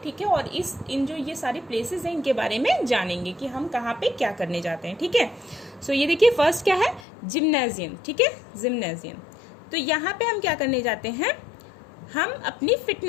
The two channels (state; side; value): drops out; right; at 7.1 s